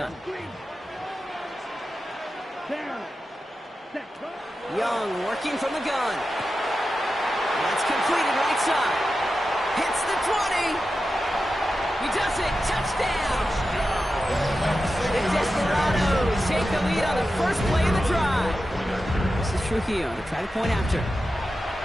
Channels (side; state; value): both; normal; correlation 0.91